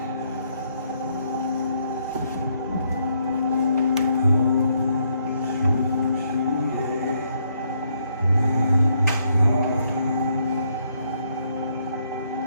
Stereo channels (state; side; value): inverted; both; correlation -0.73